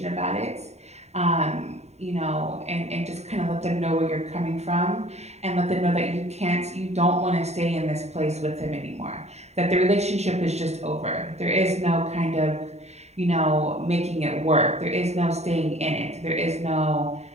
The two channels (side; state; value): left; late; 0.32 ms